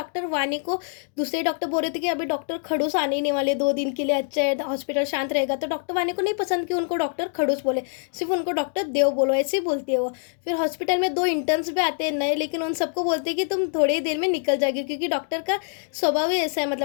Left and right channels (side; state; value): right; silent; 62 dB below the other